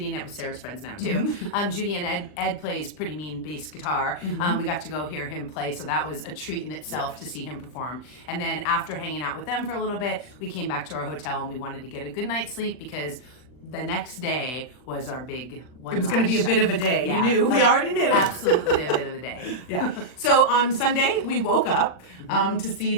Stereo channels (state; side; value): late; right; 40 ms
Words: and Ed was Sarah's friends now too. Judy and Ed plays pretty mean bass guitar. We got to go hear him play, so that was a treat in itself to see him perform. And then after hanging out with them for a little bit, we came back to our hotel and we wanted to get a good night's sleep because the next day was our big one. It was going to be a bit of a day. Yeah. We already knew. Absolutely a bit of a day. Yeah. So on Sunday, we woke up to see